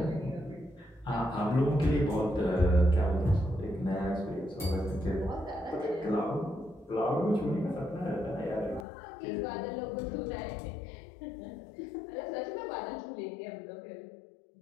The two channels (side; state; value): right; drops out; at 8.8 s